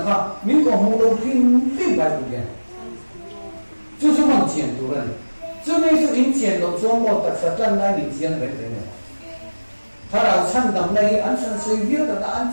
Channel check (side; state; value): both; inverted; correlation -1.00